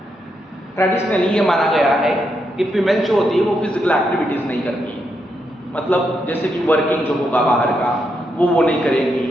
ट्रेडिशनली ये माना गया है कि फीमेल जो होती है वो फिजिकल एक्टिविटीज नहीं करती है, मतलब जैसे कि वर्किंग जो होगा बाहर का वो नहीं करेंगी,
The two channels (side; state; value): both; normal; correlation 0.81